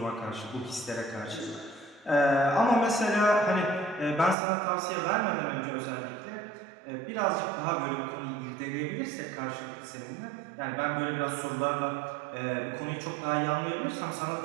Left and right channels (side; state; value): left; drops out; at 4.4 s